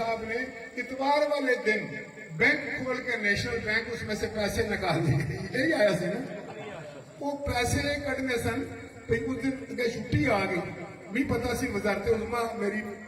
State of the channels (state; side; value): identical; both; correlation 1.00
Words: نے اتوار والے دن بینک کھول کے نیشنل بینک اس میں سے پیسے نکال دیے یہی آیا سی نا وہ پیسے کٹنے سن اس دن چھٹی آ گئی نہیں پتا سی وزارت عظما میری